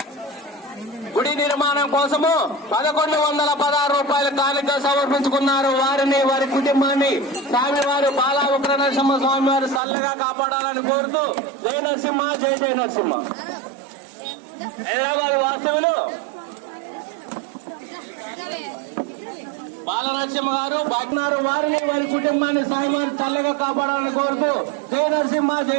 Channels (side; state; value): left; drops out; at 9.8 s